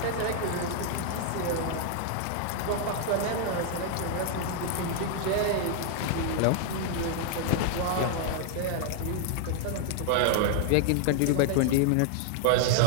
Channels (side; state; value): both; different; correlation 0.00